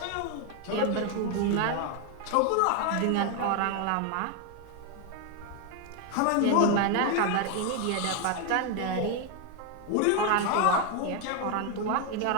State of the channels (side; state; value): both; different; correlation 0.01